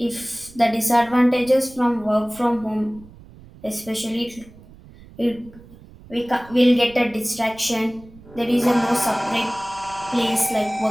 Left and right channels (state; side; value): noise; right; rumble, 22 dB below the sound